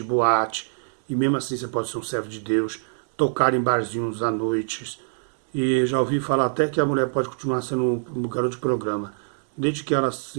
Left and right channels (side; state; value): left; silent; digital silence